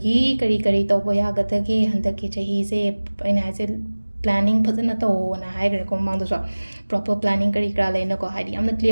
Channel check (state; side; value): inverted; both; correlation -1.00